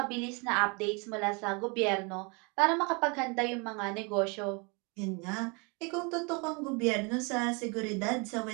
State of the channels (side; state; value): left; quieter; 31.1 dB